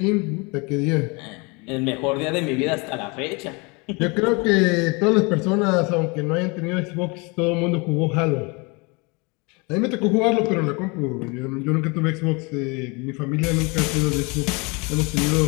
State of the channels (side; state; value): right; quieter; 29.0 dB